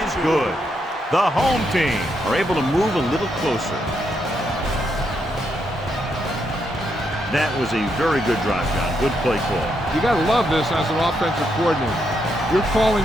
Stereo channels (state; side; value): normal; both; correlation 0.79